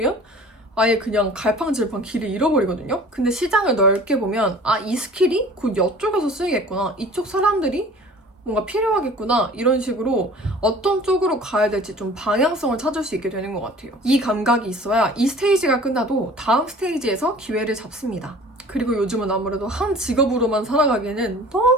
아예 그냥 갈팡질팡 길을 잃어버리거든요. 근데 시장을 넓게 보면 이 스킬이 곧 이쪽에서 쓰이겠구나. 이쪽 사람들이 뭔가 필요하겠구나. 이런 식으로 어떤 쪽으로 가야 될지 좀 방향성을 찾을 수 있게 되는 것 같아요. 이 감각이 있어야 이 스테이지가 끝나도 다음 스테이지에서 기회를 잡습니다. 그리고 요즘은 아무래도 한 직업으로만 살아가기에는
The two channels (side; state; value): both; normal; correlation 0.46